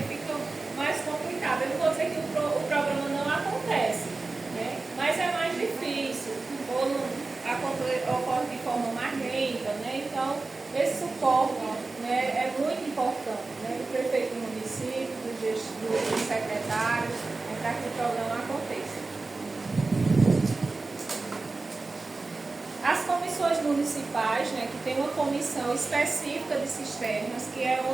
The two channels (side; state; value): left; quieter; 3.6 dB